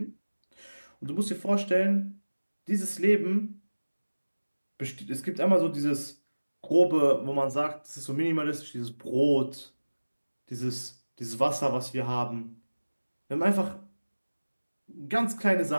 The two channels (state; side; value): inverted; both; correlation -1.00